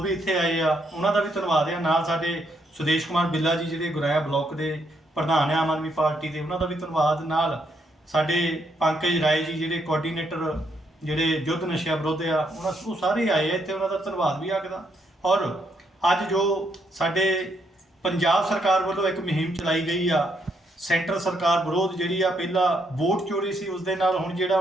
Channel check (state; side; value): normal; both; correlation 0.75